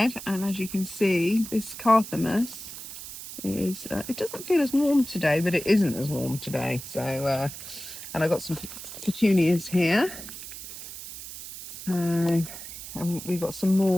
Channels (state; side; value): noise; right; hiss, 11 dB below the sound